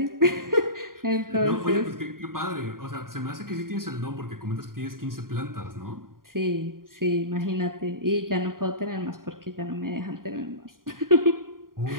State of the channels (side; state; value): left; late; 0.91 ms